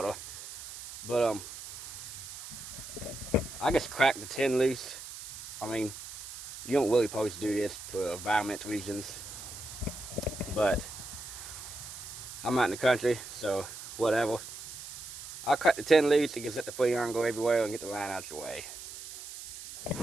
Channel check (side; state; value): right; noise; hiss, 12 dB below the sound